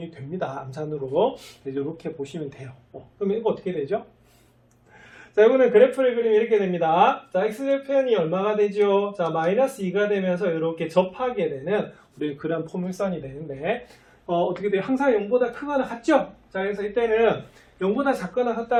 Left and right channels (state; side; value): identical; both; correlation 1.00